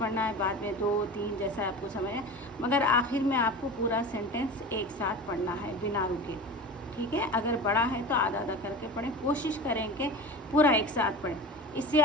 है, बाद में 2 3 जैसा आपको समझ है, मगर आखिर में आपको पूरा सेंटेंस एक साथ पढ़ना है बिना रुके। ठीक है। अगर बड़ा है तो आधा आधा करके पढ़ें, कोशिश करें कि पूरा एक साथ पढ़ें, इससे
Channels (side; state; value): both; normal; correlation 0.32